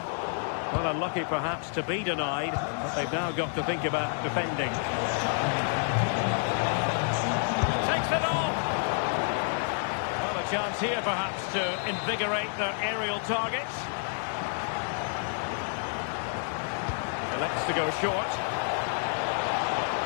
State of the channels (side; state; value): right; silent; 58 dB below the other